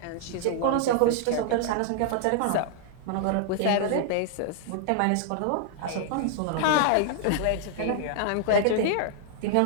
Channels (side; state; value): both; different; correlation 0.00